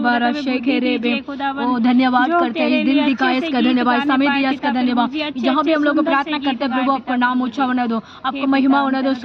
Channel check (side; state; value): both; identical; correlation 1.00